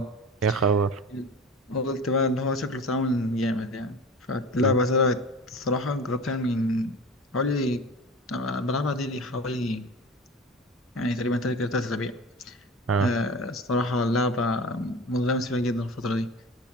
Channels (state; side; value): normal; both; correlation 0.33